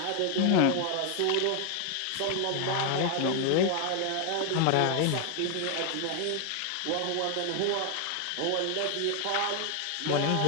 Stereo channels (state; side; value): different; both; correlation 0.00